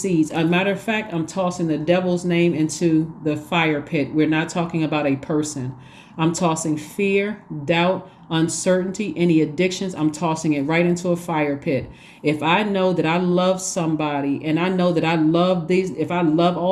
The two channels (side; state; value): both; identical; correlation 1.00